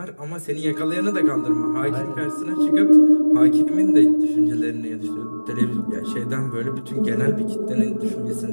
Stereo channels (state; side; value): inverted; both; correlation -1.00